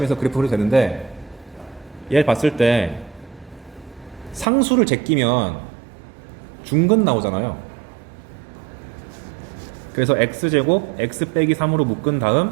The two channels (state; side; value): drops out; left; at 4.5 s